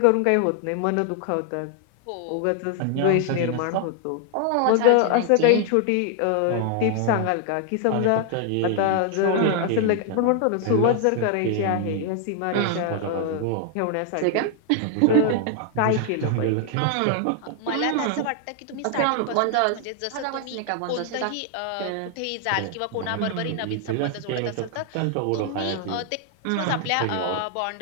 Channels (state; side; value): different; both; correlation 0.00